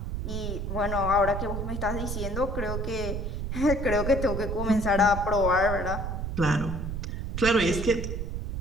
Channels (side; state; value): right; noise; rumble, 3 dB below the sound